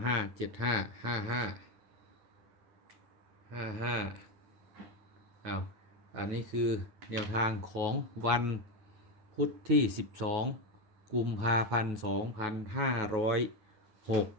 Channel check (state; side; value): late; left; 9.2 ms